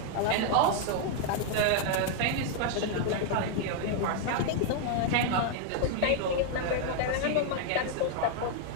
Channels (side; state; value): both; different; correlation 0.00